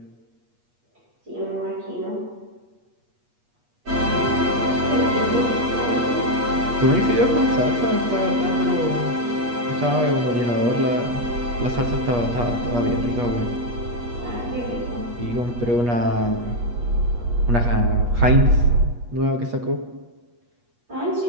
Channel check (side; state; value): left; late; 8.4 ms